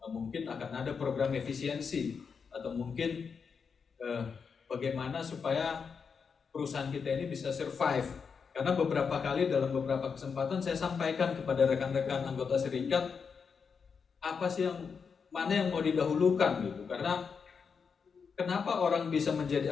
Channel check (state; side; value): quieter; right; 5.9 dB